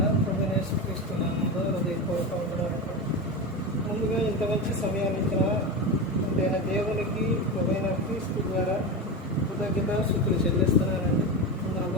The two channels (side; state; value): both; normal; correlation 0.20